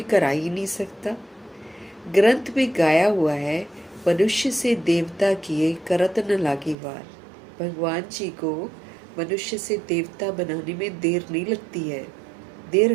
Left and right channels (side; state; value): left; drops out; at 6.8 s